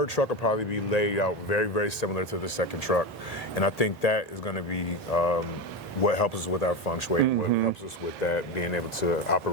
truck will probably be laid out very, very similar to the second truck. And I think that is going to be what helps us with our feng shui, what helps us with that, being able to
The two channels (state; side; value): normal; both; correlation 0.18